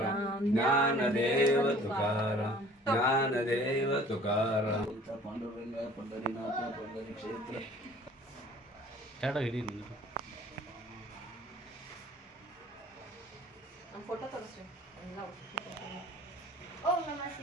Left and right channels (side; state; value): both; normal; correlation 0.50